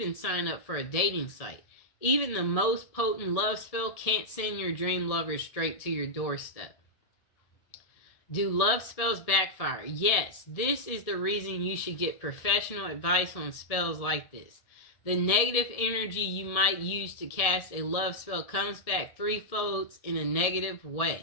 sign up for a dating site. Even the most potent love spell can't send your dream lover straight to your doorstep. Do love spells backfire? Yes, this is the reason you should get professional advice on spells like this. The negative energy you might use to cast a love spell comes back threefold in a negative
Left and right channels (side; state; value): right; late; 1.7 ms